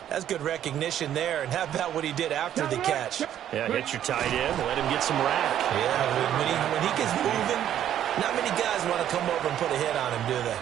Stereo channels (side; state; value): left; quieter; 10.8 dB